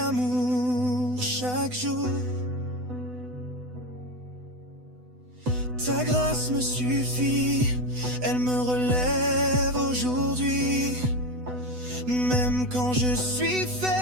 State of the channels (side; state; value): left; late; 8.0 ms